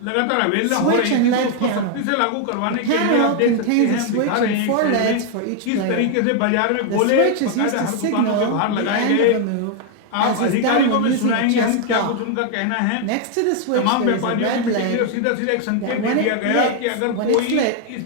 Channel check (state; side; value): different; both; correlation 0.00